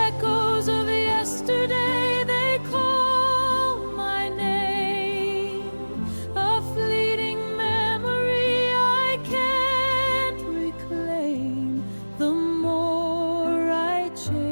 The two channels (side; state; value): both; inverted; correlation -1.00